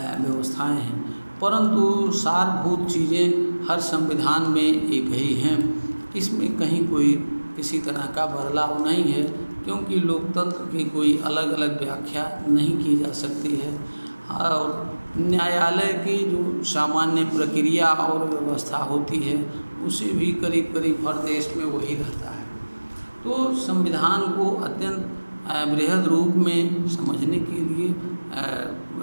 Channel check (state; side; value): inverted; both; correlation -1.00